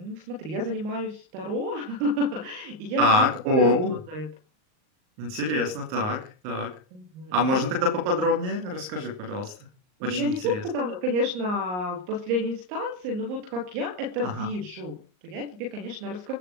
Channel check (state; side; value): late; left; 39 ms